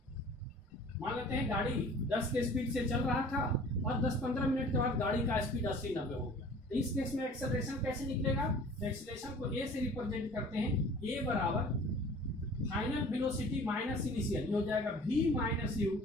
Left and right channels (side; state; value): both; normal; correlation 0.47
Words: मान लेते हैं गाड़ी 10 के स्पीड से चल रहा था और 10-15 मिनट के बाद गाड़ी का स्पीड 80-90 हो गया। तो इस केस में एक्सेलरेशन कैसे निकलेगा? तो एक्सेलरेशन को a से रिप्रेजेंट करते हैं, a बराबर फाइनल वेलोसिटी माइनस इनिशियल, ये हो जाएगा v minus you